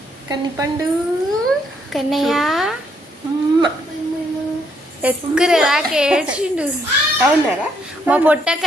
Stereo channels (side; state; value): both; normal; correlation 0.72